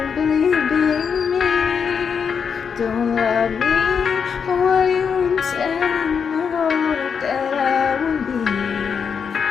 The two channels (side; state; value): right; quieter; 6.6 dB